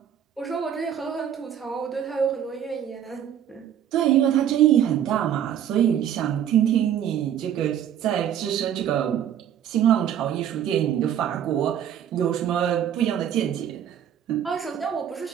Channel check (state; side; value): quieter; left; 9.8 dB